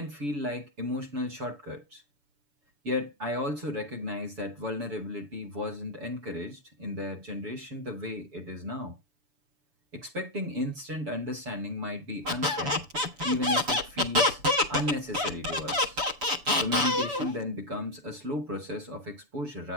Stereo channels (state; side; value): late; left; 6.9 ms